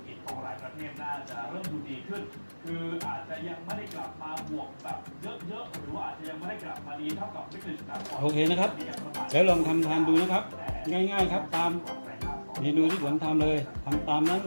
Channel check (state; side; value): inverted; both; correlation -1.00